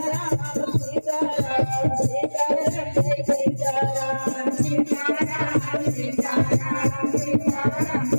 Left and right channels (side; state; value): both; inverted; correlation -1.00